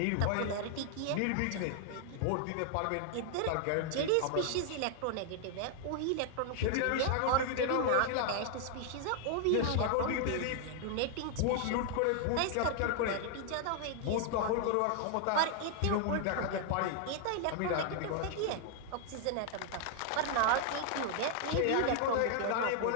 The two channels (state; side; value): different; both; correlation 0.00